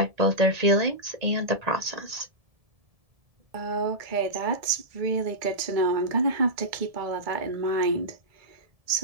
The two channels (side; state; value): left; late; 1.7 ms